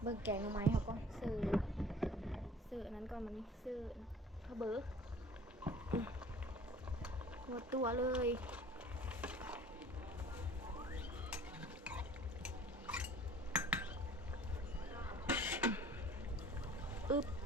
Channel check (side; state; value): both; normal; correlation 0.48